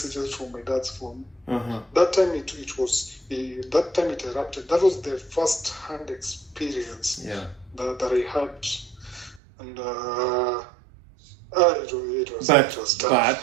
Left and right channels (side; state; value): left; drops out; at 9.4 s